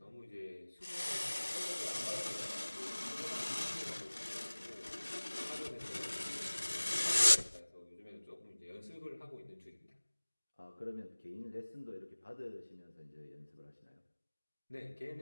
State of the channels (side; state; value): both; inverted; correlation -1.00